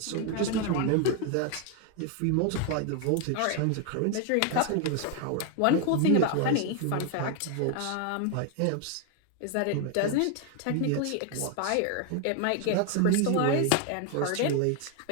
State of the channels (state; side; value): different; both; correlation 0.01